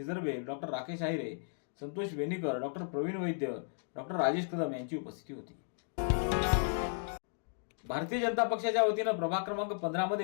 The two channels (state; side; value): silent; right; digital silence